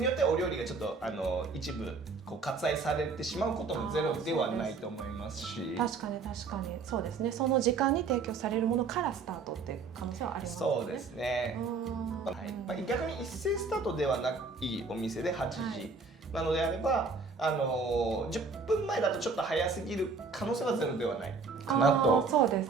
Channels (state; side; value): quieter; left; 4.5 dB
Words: よってはお料理がちょっと一部割愛されてしまうこともゼロではないと思いますし、確かにそうですね。その時間に提供されるものからスタートっていう可能性はありますね。そうですね、はい、逆に一斉スタートではないお店で8時なのであれば、10分前だとちょっと早すぎる可能性はゼロではないかなと。そうで